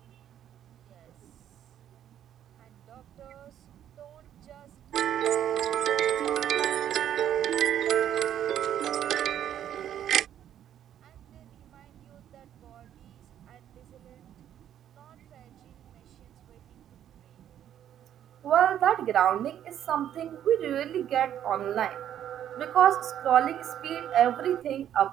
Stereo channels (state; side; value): quieter; left; 10.5 dB